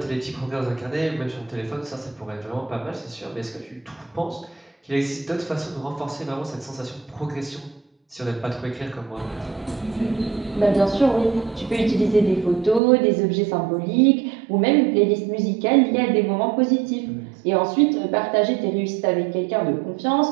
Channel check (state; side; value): drops out; left; at 12.8 s